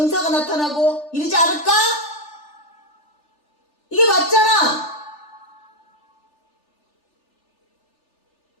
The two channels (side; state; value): right; late; 3.4 ms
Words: 나타나고 이러지 않을까? 이게 맞잖아.